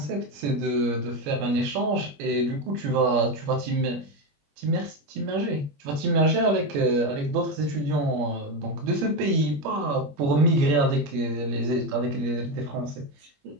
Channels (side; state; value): left; late; 21 ms